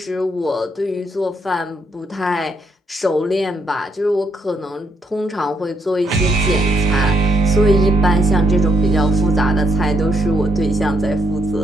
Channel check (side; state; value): both; normal; correlation 0.74